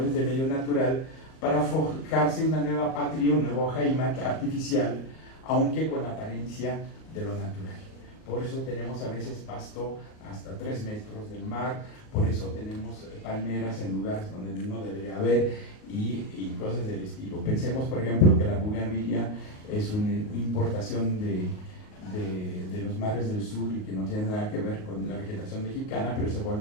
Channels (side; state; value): right; late; 38 ms